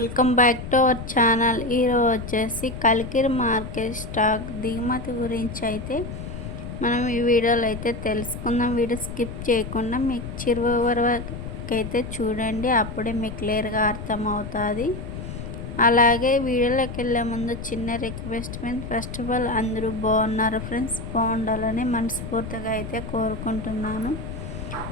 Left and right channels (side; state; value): left; noise; rumble, 8 dB below the sound